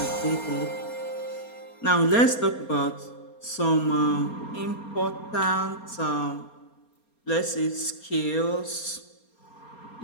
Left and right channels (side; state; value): right; late; 4.3 ms